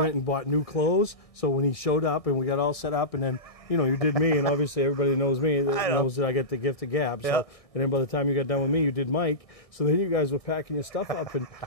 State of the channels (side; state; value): right; late; 1.6 ms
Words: and bought new clothes. So when he showed up and we got all set up, and then, you know, you did me, and obviously everybody knows me, knows that I get the gift of gab. So, and then by the time you got done with me, you did Mike. So then you guys were packing your stuff up, and